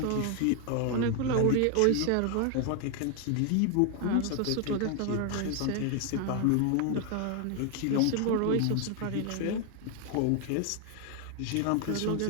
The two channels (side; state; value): both; different; correlation 0.00